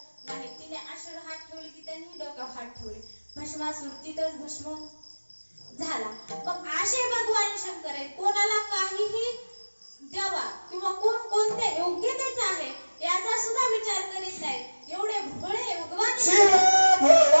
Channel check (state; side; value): inverted; both; correlation -1.00